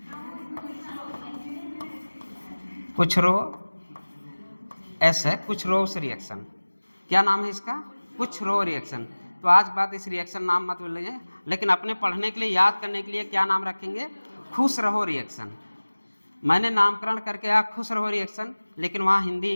कुछ रो, एस है, कुछ रोस रिएक्शन। क्या नाम है इसका, कुछ रो रिएक्शन। तो आज बात इस रिएक्शन नाम मत बोलिए, लेकिन अपने पढ़ने के लिए, याद करने के लिए क्या नाम रखेंगे, खुश रहो रिएक्शन। मैंने नामकरण करके आया खुश रहो रिएक्शन, लेकिन वहाँ हिंदी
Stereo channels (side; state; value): both; inverted; correlation -1.00